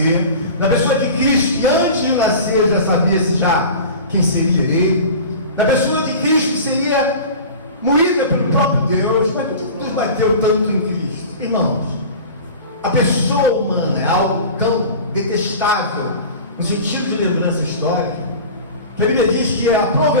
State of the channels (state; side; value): inverted; both; correlation -0.36